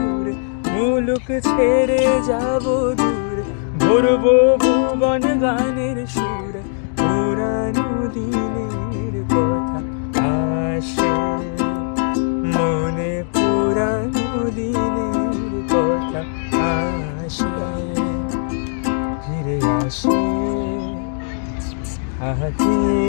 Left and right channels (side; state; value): right; silent; 65 dB below the other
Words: মুলুক ছেড়ে যাব দূরে, ভরবো ভুবন গানের সুরে, পুরানো দিনের কথা আসে মনে, পুরানো দিনের কথা আসে, ফিরে আসে হাতে